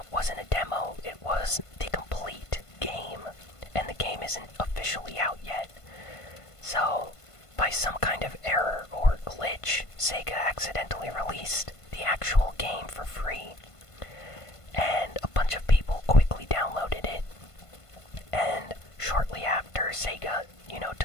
wasn't a demo, it was the complete game, and the game isn't officially out yet. So, by some kind of error or glitch, Sega accidentally released the actual game for free. And a bunch of people quickly downloaded it. And shortly after, Sega,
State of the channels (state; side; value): late; right; 1.5 ms